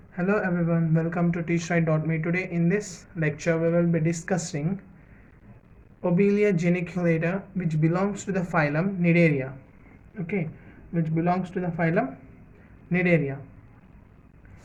Hello everyone, welcome to teachright.me. Today in this lecture we will be discussing Obelia geniculata, which belongs to the phylum Cnidaria. Okay, which belongs to the phylum Cnidaria.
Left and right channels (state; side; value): identical; both; correlation 1.00